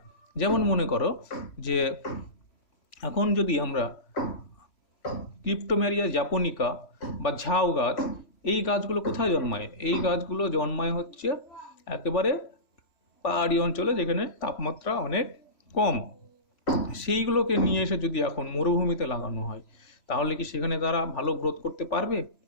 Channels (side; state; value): right; late; 3.1 ms